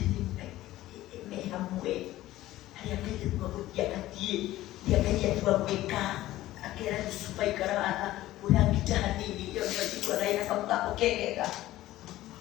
mehamwe hayakete kwa kutiakatie diakatia tuwa kweka akera Lucifer ikara urangitani hiyo ndio kwa raina kama okeka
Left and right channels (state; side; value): quieter; right; 15.5 dB